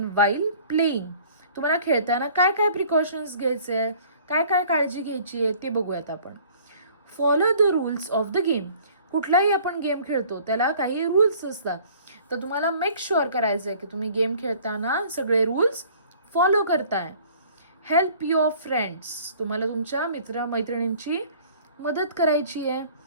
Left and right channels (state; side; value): inverted; both; correlation -0.52